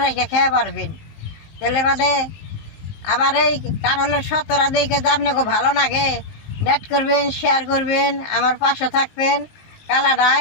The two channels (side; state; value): right; late; 20 ms